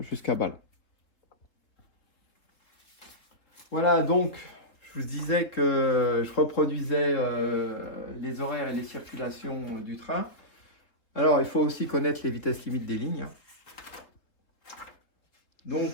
Bâle. Voilà, donc je vous disais que je reproduisais les horaires et les circulations du train. Alors, il faut aussi connaître les vitesses limites des lignes.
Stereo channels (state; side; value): late; right; 3.7 ms